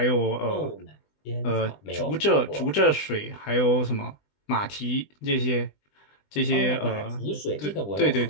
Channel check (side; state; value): right; late; 20 ms